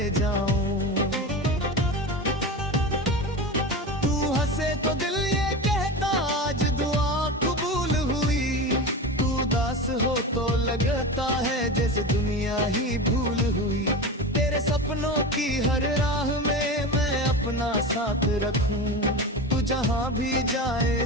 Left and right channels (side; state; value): both; normal; correlation 0.26